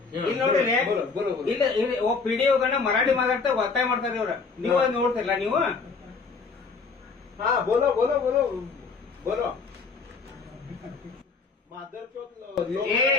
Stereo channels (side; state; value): right; quieter; 4.7 dB